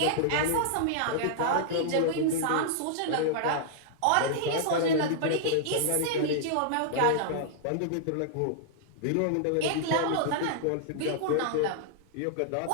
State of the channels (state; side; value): different; both; correlation -0.01